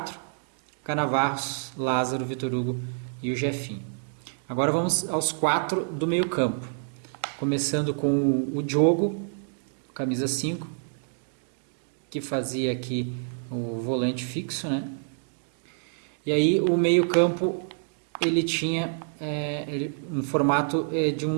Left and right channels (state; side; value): silent; left; digital silence